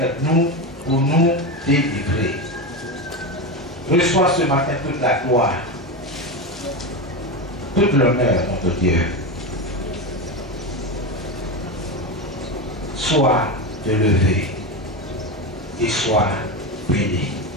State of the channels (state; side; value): normal; both; correlation 0.17